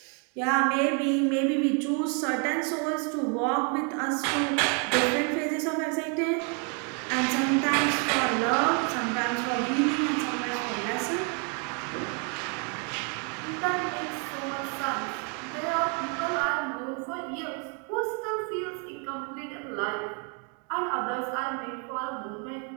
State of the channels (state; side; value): quieter; left; 38.1 dB